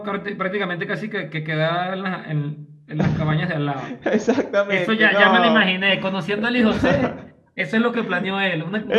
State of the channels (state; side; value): identical; both; correlation 1.00